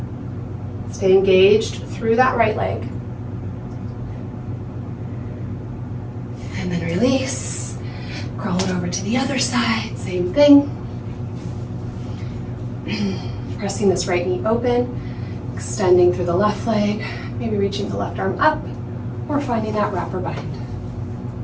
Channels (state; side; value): identical; both; correlation 1.00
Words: Stay engaged through that right leg. And then release. Crawl it over to the other side, same thing. Pressing this right knee open, extending through the left leg, maybe reaching the left arm up, or finding that wrap or bind.